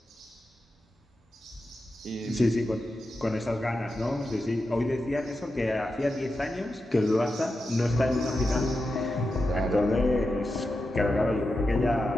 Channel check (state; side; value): normal; both; correlation 0.89